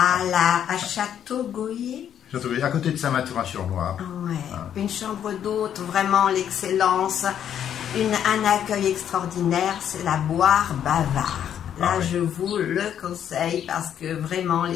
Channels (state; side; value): quieter; right; 9.5 dB